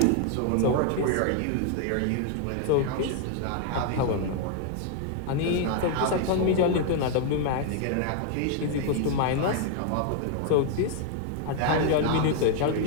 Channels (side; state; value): both; different; correlation 0.00